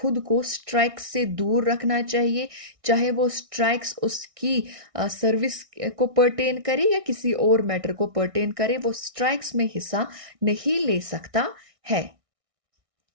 को स्ट्राइक्स से दूर रखना चाहिए, चाहे वो स्ट्राइक्स उसकी सर्विस को पर्टेन करे या किसी और मैटर को पर्टेन करे, वो स्ट्राइक्स में हिस्सा नहीं ले सकता है।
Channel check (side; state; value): left; late; 1.6 ms